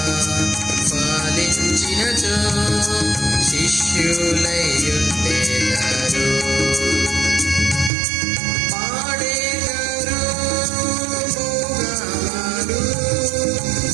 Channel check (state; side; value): drops out; left; at 7.9 s